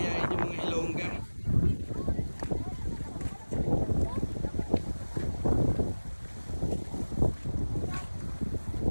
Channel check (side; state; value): both; inverted; correlation -1.00